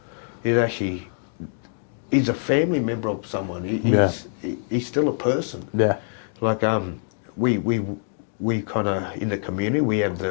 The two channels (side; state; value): right; silent; 62 dB below the other